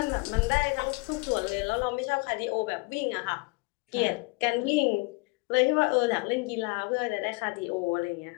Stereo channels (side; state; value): right; quieter; 27.9 dB